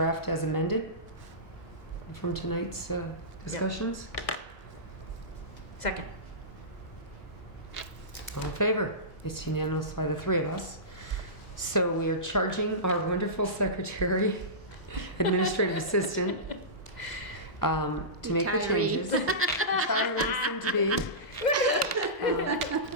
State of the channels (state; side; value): late; right; 1.0 ms